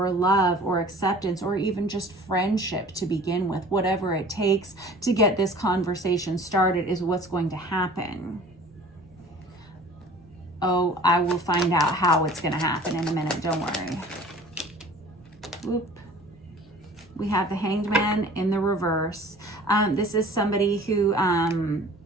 love or acceptance or even just friendship to begin with. Whatever it takes to get this conversation started is what's going to happen. Oh, I will find out how it's going to happen in a minute. Don't worry. Whoop. We have the Hanged Man in the reverse. This is somebody who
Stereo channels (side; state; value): both; normal; correlation 0.46